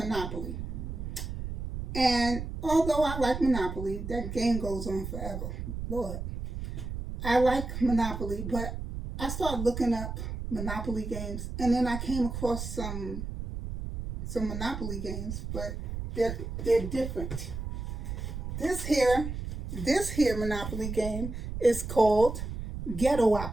And although I like Monopoly, that game goes on forever. Lord, I like Monopoly, but I started looking up Monopoly games, and then I came across some Monopoly games, but they're different. This here Monopoly game is called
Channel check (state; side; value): noise; right; rumble, 6 dB below the sound